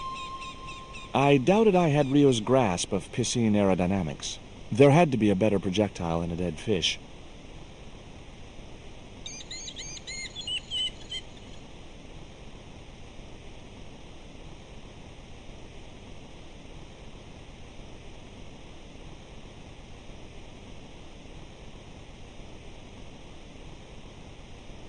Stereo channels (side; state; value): both; identical; correlation 1.00